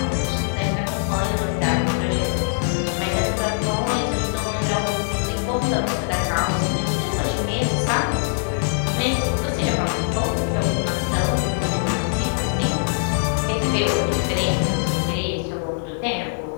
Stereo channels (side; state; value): right; silent; digital silence